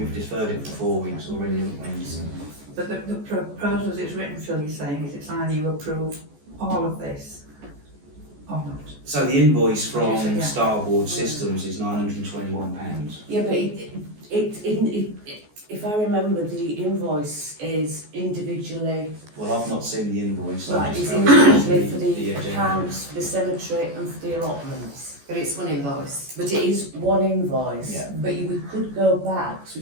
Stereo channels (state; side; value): late; left; 14 ms